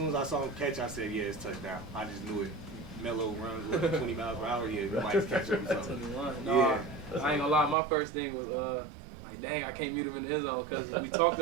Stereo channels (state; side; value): drops out; left; at 7.8 s